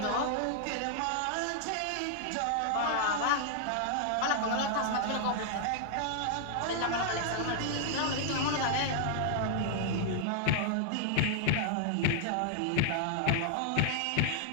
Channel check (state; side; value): different; both; correlation -0.01